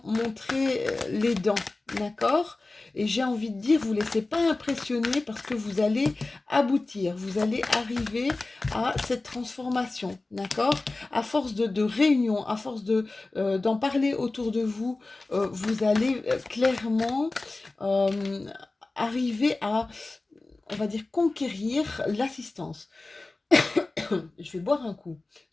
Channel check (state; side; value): quieter; right; 3.2 dB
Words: montrer les dents, d'accord? Et j'ai envie de dire, vous ne laissez pas impressionner parce que vous allez aboutir, vous allez arriver à cette transformation, d'accord? À force de réunion, à force d'en parler autour de vous, vous allez clairement arriver à, on va dire, conquérir l'assistance. Je vais boire un coup,